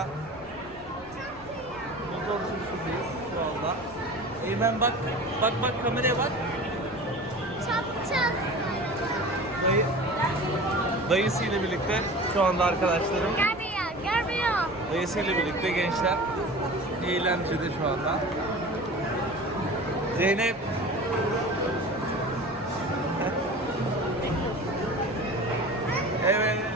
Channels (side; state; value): right; noise; rumble, 22 dB below the sound